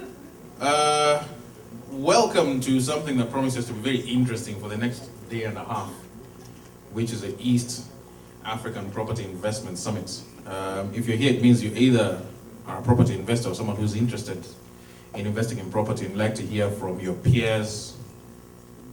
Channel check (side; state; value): both; identical; correlation 1.00